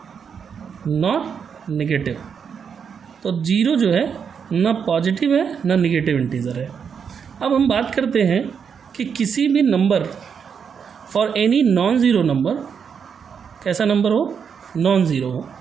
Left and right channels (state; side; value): quieter; left; 6.8 dB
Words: not negative. तो ज़ीरो जो है ना पॉजिटिव है ना नेगेटिव इंटीजर है. अब हम बात करते हैं कि किसी भी number for any non zero number, कैसा नंबर हो, नॉन ज़ीरो हो.